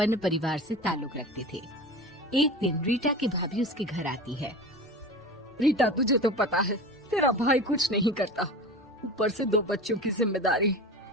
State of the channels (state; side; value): normal; both; correlation 0.32